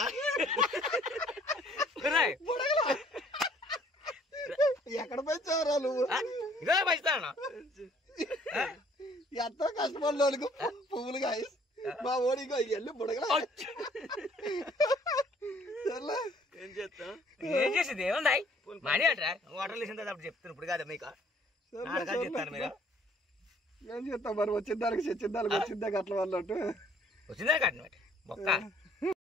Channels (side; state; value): both; normal; correlation 0.60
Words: ఎక్కడ పెంచావురా నువ్వు ఇదే పెంచుతాను ఎంతో కష్టపడినోళ్ళకు పువ్వులు కాయ మా ఓడికో వెళ్ళి బుడగల ఏం చేస్తాం ఏం చేసింది ఏముంది మనీ అంటారా వాటర్ వేసిన తర్వాత అప్పుడు చెప్తాను ఇప్పుడు కాదు మీకు చెప్తాను మీరు ఏం చేస్తాం మరి వచ్చిన దానికి చచ్చిన దానికి వచ్చిందే అట్ల వాళ్ళట్టు వచ్చిందే కట్టినట్టు మొక్క